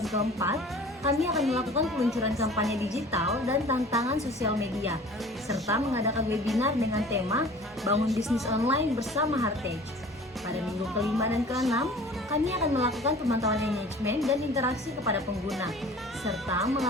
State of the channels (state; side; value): normal; both; correlation 0.45